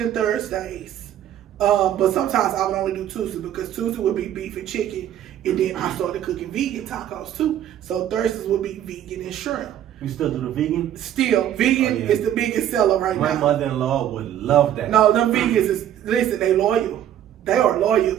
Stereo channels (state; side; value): quieter; left; 11.0 dB